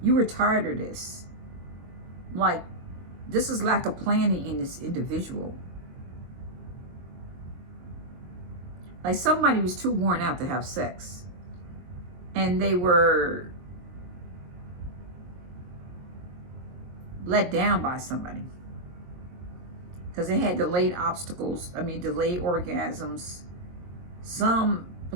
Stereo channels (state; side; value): late; left; 22 ms